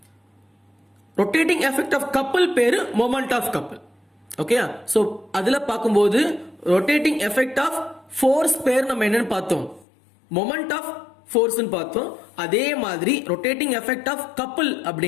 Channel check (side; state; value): right; drops out; at 9.9 s